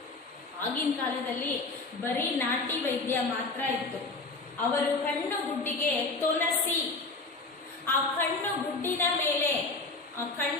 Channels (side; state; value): right; quieter; 3.6 dB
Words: ಆಗಿನ ಕಾಲದಲ್ಲಿ ಬರೀ ನಾಟಿ ವೈದ್ಯ ಮಾತ್ರ ಇತ್ತು. ಅವರು ಕಣ್ಣು ಗುಡ್ಡಿಗೆ ತೊಲಸಿ, ಆ ಕಣ್ಣು ಗುಡ್ಡಿನ